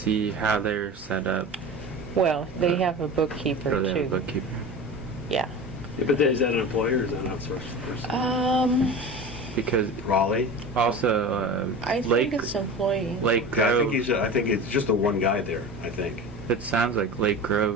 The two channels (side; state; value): both; normal; correlation 0.32